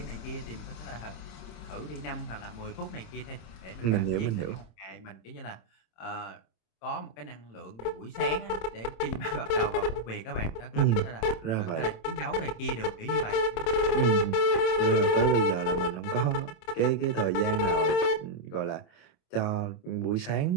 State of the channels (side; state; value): right; late; 27 ms